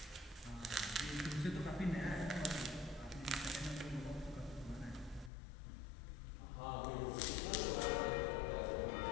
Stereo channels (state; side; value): drops out; right; at 5.3 s